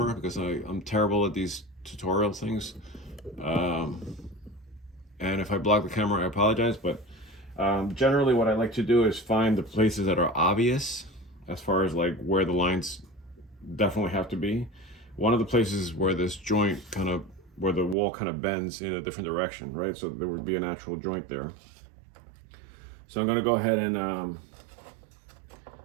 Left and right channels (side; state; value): left; drops out; at 17.9 s